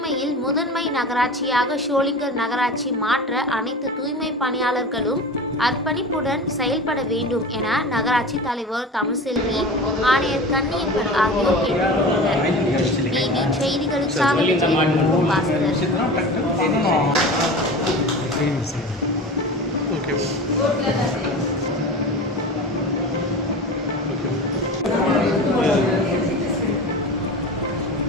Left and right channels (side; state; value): both; normal; correlation 0.32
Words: முதன்மை நகராட்சியாக ஷோலிங்கர் நகராட்சி மாற்ற அனைத்து தூய்மை பணியாளர்களும் அர்ப்பணிப்புடன் செயல்பட வேண்டும் என நகராட்சி தலைவர் தமிழ்செல்வி, ஆணையர் கன்னியப்பன் ஆகியோர் கேட்டுக்கொண்டனர். டிவி செய்திகளுக்காக பாஸ்கர்.